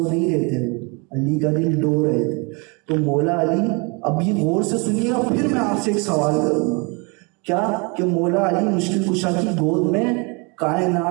نہیں رہے تھے، علی کا دل ڈو رہے تھے، تو مولا علی، اب یہ غور سے سنیے گا، پھر میں آپ سے ایک سوال کروں گا، کیا کہ مولا علی مشکل کشا کی گود میں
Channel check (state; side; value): quieter; left; 30.9 dB